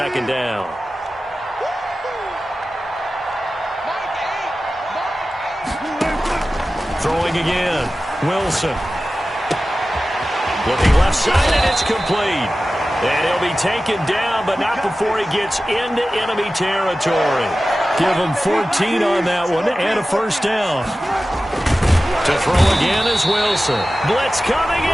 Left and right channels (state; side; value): normal; both; correlation 0.95